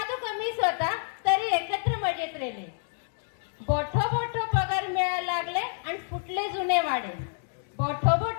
कमीच होता तरी एकत्र मजेत रेले। बोठो बोठो पगार मिळायला लागले आणि फुटले जुने वाडे, बोठो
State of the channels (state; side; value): silent; right; digital silence